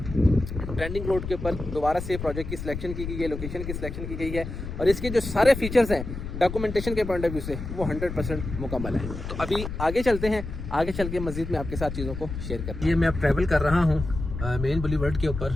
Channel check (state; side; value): noise; left; rumble, 7 dB below the sound